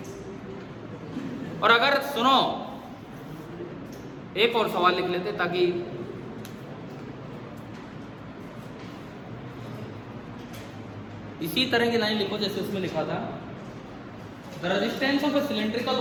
और अगर सुनो, एक और सवाल लिख लेते ताकि इसी तरह की लाइन लिखो जैसे उसमें लिखा था। The resistance of A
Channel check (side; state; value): both; identical; correlation 1.00